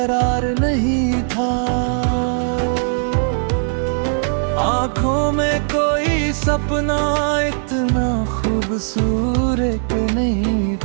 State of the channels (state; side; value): silent; left; digital silence